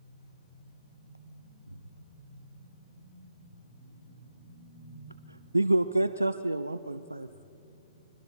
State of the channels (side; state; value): both; inverted; correlation -0.95